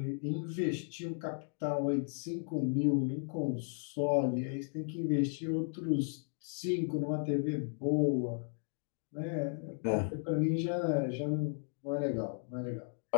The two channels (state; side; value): silent; right; 54 dB below the other